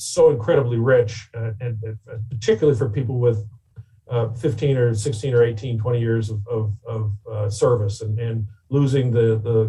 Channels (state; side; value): identical; both; correlation 1.00